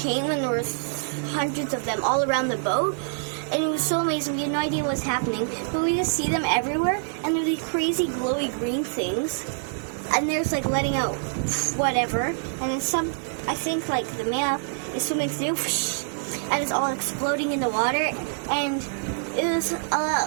and there were hundreds of them all around the boat, and it was so amazing. We had no idea what was happening, but we just see them everywhere, and they're these crazy glowy green things, and there's like letting out whatever, and then some, I think like the male is swimming through, and it's all exploding in the water, and it was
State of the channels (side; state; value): left; silent; 61 dB below the other